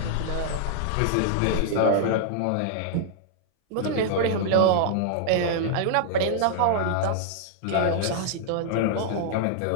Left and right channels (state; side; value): different; both; correlation -0.01